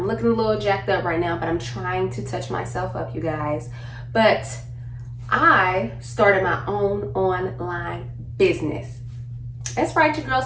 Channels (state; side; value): identical; both; correlation 1.00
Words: looking a little jacked up right now, but I'm trying to touch myself up, you guys. But I started my own online business. That's right, your girl